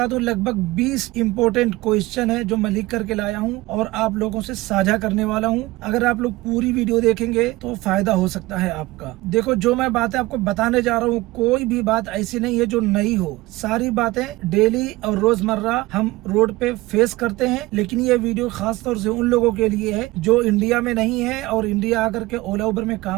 दूं, लगभग 20 इम्पोर्टेंट क्वेश्चन है जो मैं लिख करके लाया हूं और आप लोगों से साझा करने वाला हूं। अगर आप लोग पूरी वीडियो देखेंगे तो फायदा हो सकता है आपका। देखो, जो मैं बातें आपको बताने जा रहा हूँ, कोई भी बात ऐसी नहीं है जो नई हो। सारी बातें डेली और रोजमर्रा हम रोड पे फेस करते हैं। लेकिन ये वीडियो खास तौर से उन लोगों के लिए है जो इंडिया में नहीं है और इंडिया आकर के ओला उबर में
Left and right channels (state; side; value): quieter; left; 19.8 dB